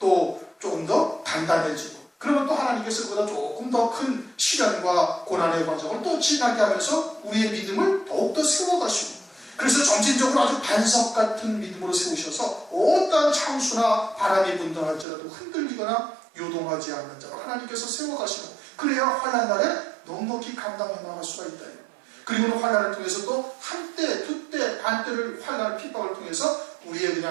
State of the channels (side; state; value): left; drops out; at 15.1 s